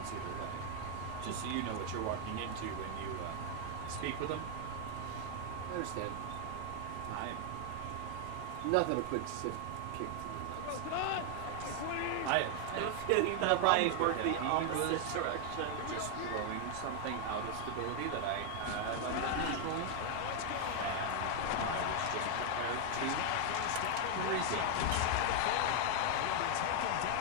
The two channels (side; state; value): both; different; correlation 0.00